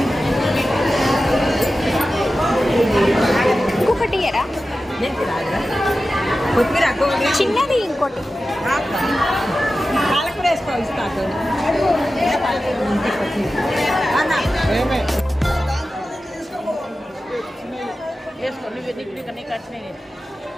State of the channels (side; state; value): both; normal; correlation 0.93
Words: అది ఇంకొకటి ఇయ్యరా? మెంతి రాదురా? కొత్తిమీర చిన్నది ఇంకోటి. పాలకూర వేసుకో ఇస్తా. వేసుకో నువ్వు నీకు కట్టినాయి.